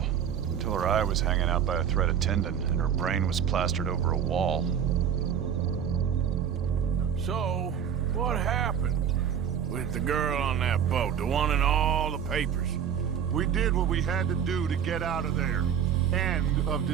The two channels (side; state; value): left; quieter; 8.5 dB